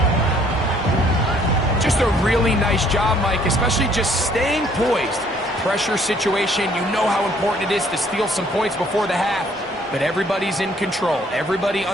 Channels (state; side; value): normal; both; correlation 0.62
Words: Just a really nice job, Mike, especially just staying poised. Pressure situation, you know how important it is to steal some points before the half, but everybody's in control. Everybody